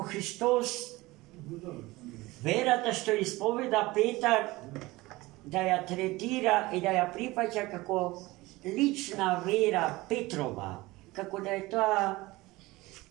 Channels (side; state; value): left; quieter; 20.4 dB